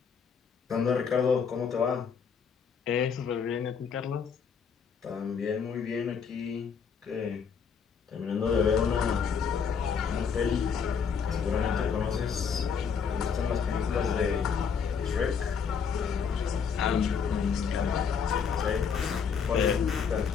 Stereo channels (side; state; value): right; quieter; 6.5 dB